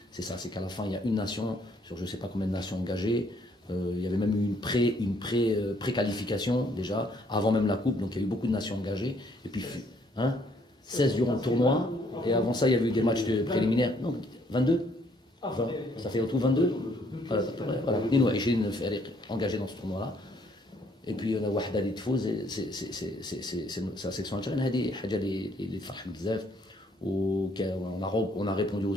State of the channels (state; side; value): normal; both; correlation 0.66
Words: c'est ça, c'est qu'à la fin, il y a une nation sur je ne sais pas combien de nations engagées. Il y avait même eu une pré-qualification déjà, avant même la coupe, donc il y a eu beaucoup de nations engagées. Et puis, 16 durant le tournoi, et avant ça, il y avait eu des matchs préliminaires. Non, 22 20, ça fait en tout 22. Voilà, engagés dans ce tournoi-là. Et puis, on a Wahda li tfouz, c'est la section algérienne, هذه حاجة اللي تفرح بزاف. On a répondu